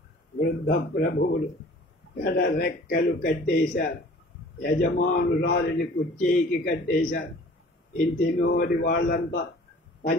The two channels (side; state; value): both; normal; correlation 0.48